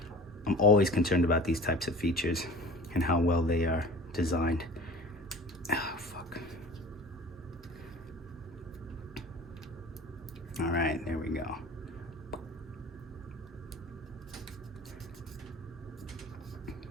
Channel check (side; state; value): both; normal; correlation 0.41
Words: I'm always concerned about these types of features and how well they are designed. Oh, fuck. All right, there we go.